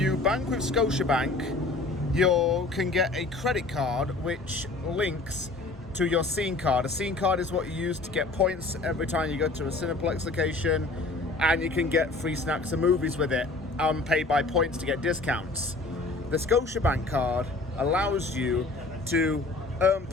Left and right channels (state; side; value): quieter; right; 3.3 dB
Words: bank with Scotiabank, you can get a credit card which links to your scene card. A scene card is what you use to get points every time you go to a Cineplex location, and you can get free snacks and movies with it and pay by points to get discounts. The Scotiabank card allows you to earn